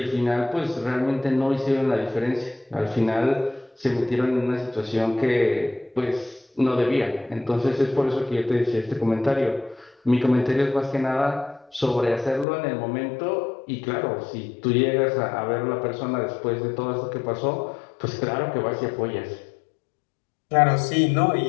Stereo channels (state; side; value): drops out; right; at 12.5 s